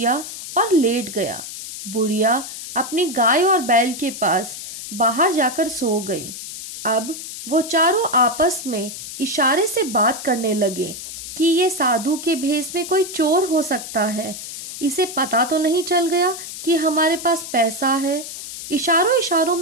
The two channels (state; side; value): noise; left; hiss, 10 dB below the sound